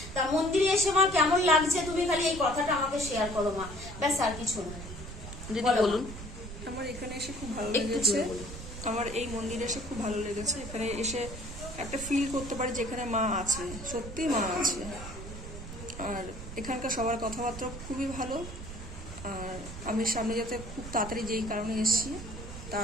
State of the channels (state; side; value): noise; right; rumble, 11 dB below the sound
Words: তা মন্দিরে এসে মা কেমন লাগছে তুমি খালি এই কথাটা আমাকে শেয়ার করো মা, ব্যাস আর কিছু না। দিদি বলুন। আমার এখানে এসে খুব ভালো লেগেছে, আমার এই মন্দিরে এসে খুব ভালো লেগেছে। এখানে এসে একটা ফিল করতে পারি যে এখানে মা আছে, সত্যি মা আছে। আর এখানকার সবার কথাবার্তা খুবই ভালো। আর আমি সামনে যাতে খুব তাড়াতাড়ি যেই কারণে এসেছি